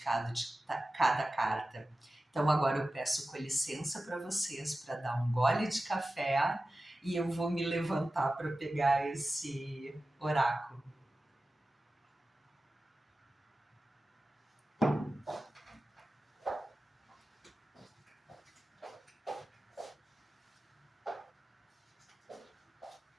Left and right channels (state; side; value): normal; both; correlation 0.95